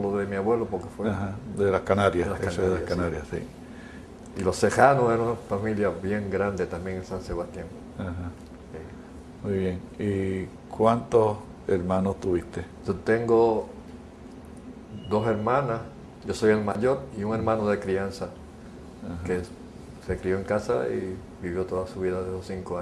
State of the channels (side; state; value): both; identical; correlation 1.00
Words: de mi abuelo porque fue de las Canarias. De las Canarias, sí. Y los Cejanos eran una familia bien grande también en San Sebastián. Ajá. Sí. Muy bien. ¿Y cuántos hermanos tuviste? Yo tengo 2 hermanas, yo soy el mayor, y un hermano de crianza, que se crió en casa y vivió toda su vida de los 5